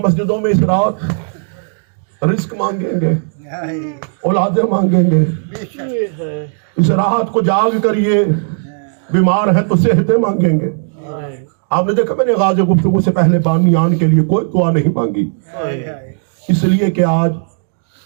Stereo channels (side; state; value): left; silent; digital silence